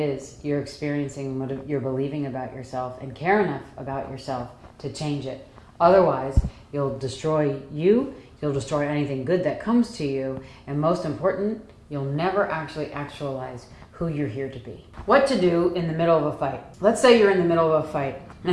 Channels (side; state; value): both; identical; correlation 1.00